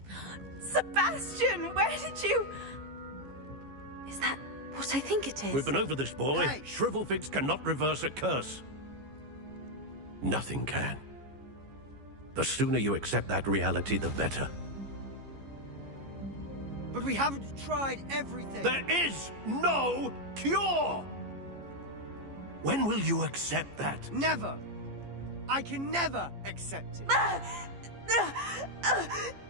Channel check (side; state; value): left; late; 15 ms